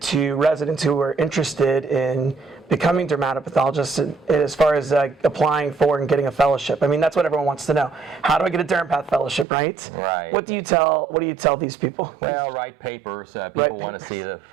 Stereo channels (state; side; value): drops out; left; at 9.5 s